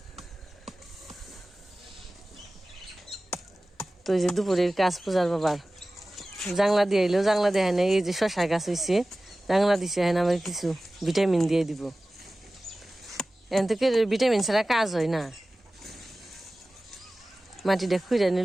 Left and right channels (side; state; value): both; normal; correlation 0.97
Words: তো এই যে দুপুরের কাজ পূজার বাবার জাংলা দিয়ে এলো, জাংলা দেয় না। এই যে শশা গাছ হয়েছে, জাংলা দিছে, হ্যাঁ আমার কিছু ভিটামিন দিয়ে দিব। এন থেকে ভিটামিন ছাড়া কাজ হয় না। মাটিটা খুঁড়ে